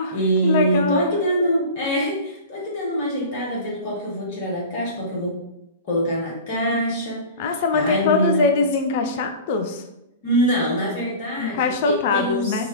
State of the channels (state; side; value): inverted; both; correlation -0.34